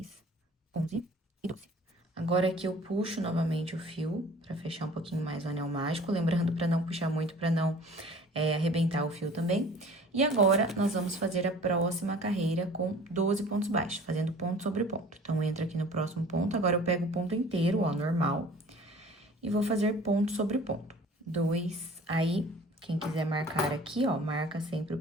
11 e 12. Agora, aqui eu puxo novamente o fio pra fechar um pouquinho mais o anel mágico, lembrando pra não puxar muito, pra não arrebentar o fio também. E agora, nós vamos fazer a próxima carreira com 12 pontos baixos, fazendo ponto sobre ponto. Então, entra aqui no próximo ponto, agora eu pego o ponto inteiro, ó, normal, e vou fazer ponto sobre ponto. 2. Aí, quem quiser marcar aqui, ó, marca sempre o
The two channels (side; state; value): both; normal; correlation 0.47